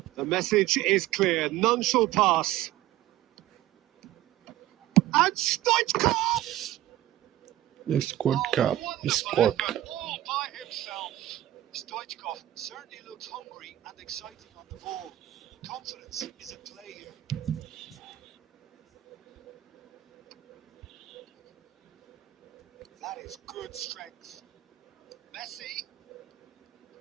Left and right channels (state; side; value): quieter; left; 14.5 dB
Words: The message is clear. None shall pass. And Stoichkov! Squad cup. Squad cup. All by himself. Stoichkov certainly looks hungry and excited on the ball. Confidence is at play here. That is good strength. Messi